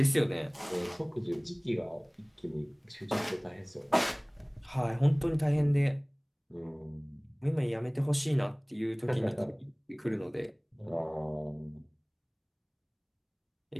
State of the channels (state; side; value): identical; both; correlation 1.00